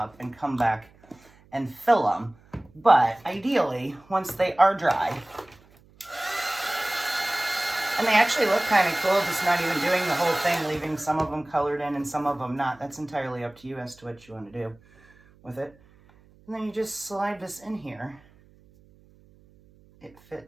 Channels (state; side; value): noise; right; hum, 28 dB below the sound